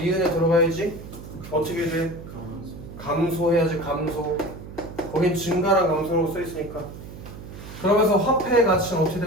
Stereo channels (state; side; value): noise; right; hum, 13 dB below the sound